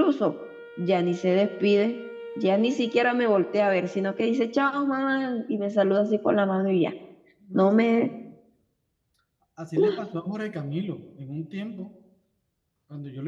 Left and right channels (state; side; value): identical; both; correlation 1.00